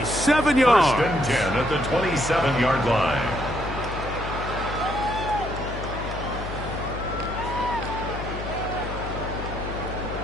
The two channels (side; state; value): left; noise; hum, 8 dB below the sound